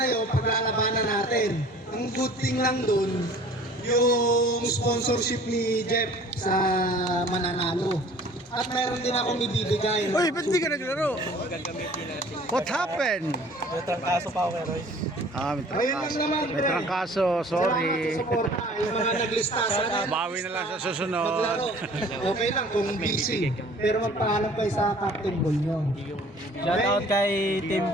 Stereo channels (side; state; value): both; normal; correlation 0.50